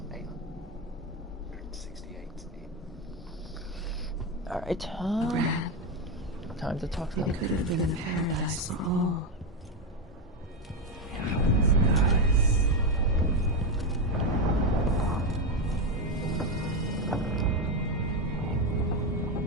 in. Alright, time to talk to them. it could have been a paradise for all.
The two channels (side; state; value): both; normal; correlation 0.10